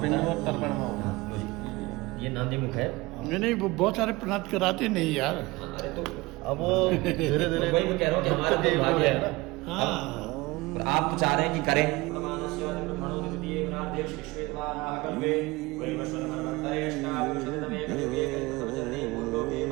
पिंड और तर्पण में होगा। ये नांदी मुख है। नहीं वो बहुत सारे प्रार्थ कराते नहीं यार। अरे तो अब वो धीरे धीरे वही मैं कह रहा हूँ कि हमारा तो भाग्य है। हाँ। और आप तो चाह रहे हैं कि करें।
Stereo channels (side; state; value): left; quieter; 21.9 dB